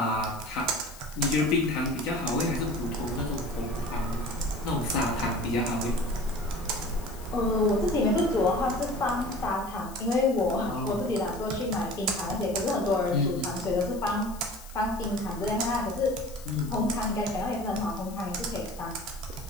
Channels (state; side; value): noise; left; hiss, 19 dB below the sound